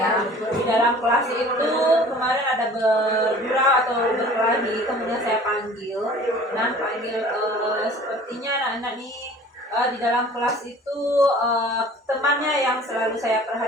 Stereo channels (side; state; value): both; normal; correlation 0.47